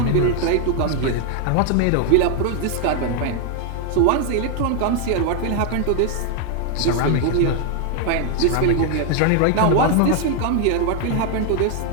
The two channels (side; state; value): both; different; correlation 0.00